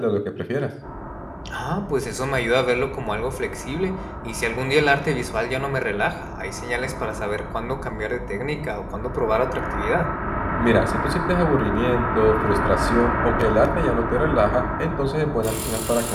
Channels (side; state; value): both; identical; correlation 1.00